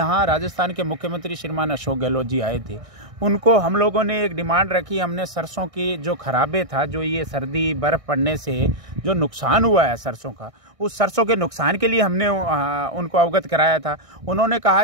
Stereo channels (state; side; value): late; left; 1.6 ms